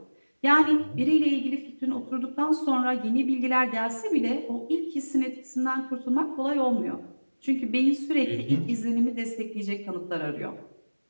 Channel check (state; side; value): inverted; both; correlation -1.00